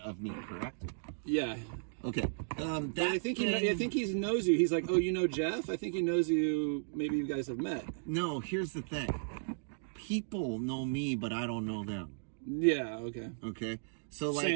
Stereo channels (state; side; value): silent; left; digital silence